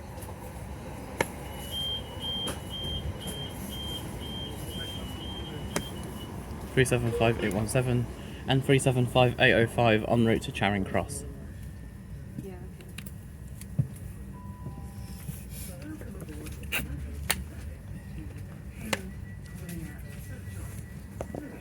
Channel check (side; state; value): both; identical; correlation 1.00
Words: (375,817) and (375,805) en route to Charing Cross.